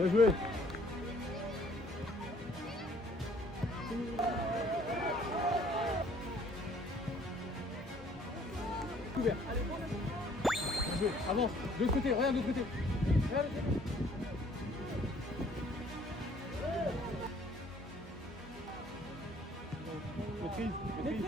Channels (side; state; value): both; normal; correlation 0.59